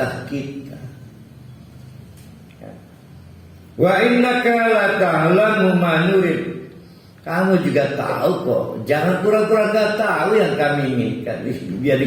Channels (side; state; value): both; identical; correlation 1.00